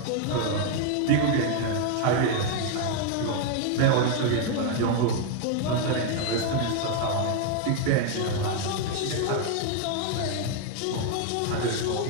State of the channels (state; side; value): different; both; correlation 0.01